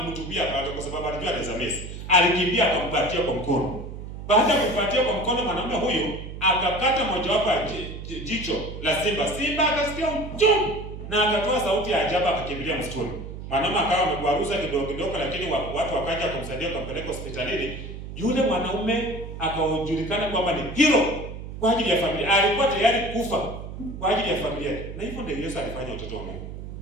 panga kwa sababu alijua anaweza mesi. Alikimbia akampatia kwa mkono. Baada ya kumpatia kwa mkono, mwanaume huyu akakata mojawapo ya jicho la simba. Simba akasikia uchungu na akatoa sauti ya ajabu, akakimbilia msituni. Mwanaume akawa amegwaruza kidogo, lakini watu wakaja kumsaidia, kumpeleka hospitalini. Yule mwanaume akajulikana kwamba ni hero kwa ajili ya familia. Alikuwa tayari kufa kwa ajili ya familia. Na hivyo ndio Yesu alifanya watoto wa Mungu.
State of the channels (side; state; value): right; noise; hum, 10 dB below the sound